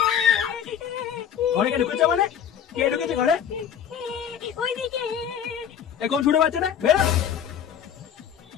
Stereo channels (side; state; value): right; quieter; 8.7 dB